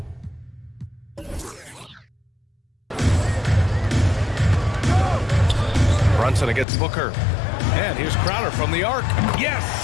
Brunson against Booker. And here's Crowder from the arc.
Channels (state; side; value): drops out; right; at 6.7 s